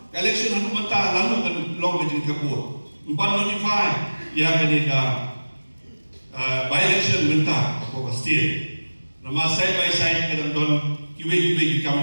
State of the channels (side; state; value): both; inverted; correlation -1.00